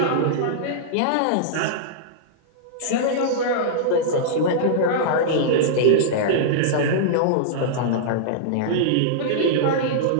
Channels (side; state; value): both; different; correlation -0.03